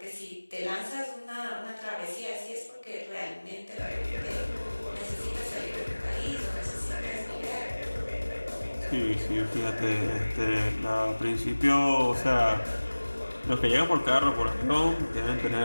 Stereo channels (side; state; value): both; inverted; correlation -1.00